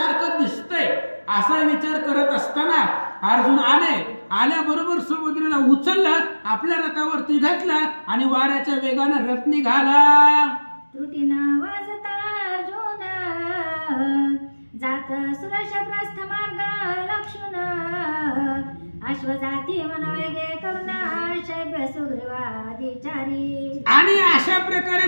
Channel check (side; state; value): both; inverted; correlation -1.00